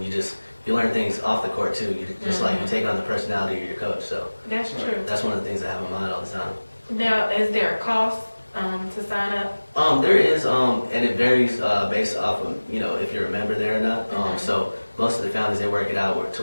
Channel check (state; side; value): inverted; both; correlation -1.00